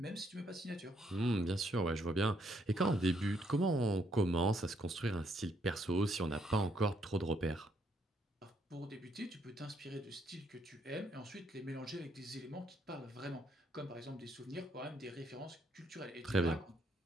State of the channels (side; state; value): both; normal; correlation 0.71